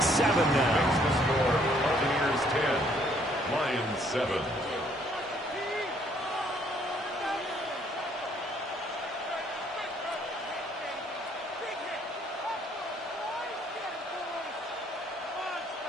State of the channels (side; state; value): both; normal; correlation 0.65